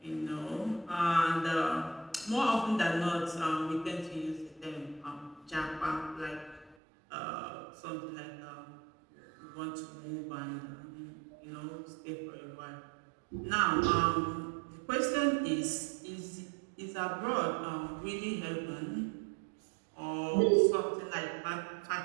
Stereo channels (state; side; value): drops out; left; at 6.8 s